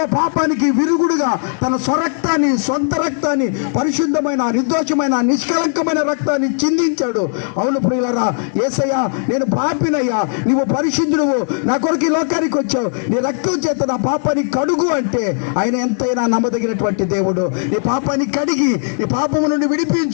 పాపానికి విరుగుడుగా తన సొంత రక్తాన్ని, పరిశుద్ధమైన, నిర్దోషమైన, నిష్కలంకమైన రక్తాన్ని చిందించాడు. అవును ప్రియులారా, యేసయ్యా నేను పాపినయ్యా, నీవు పరిశుద్ధుడువు, నా కొరకు ఈ లోకానికి వచ్చావు, నీ రక్తం చేత నా పాపాన్ని కడుగు అంటే ఆయన ఎంతైనా నమ్మదగినటువంటి దేవుడు. నీ పాపాన్ని కడిగి నీ పాపము నుండి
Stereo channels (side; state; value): right; silent; 67 dB below the other